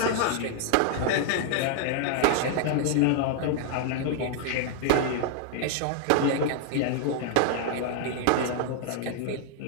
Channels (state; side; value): different; both; correlation 0.00